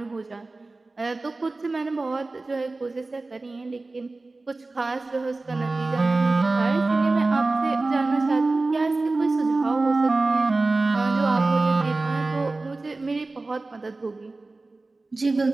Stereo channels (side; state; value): left; quieter; 3.3 dB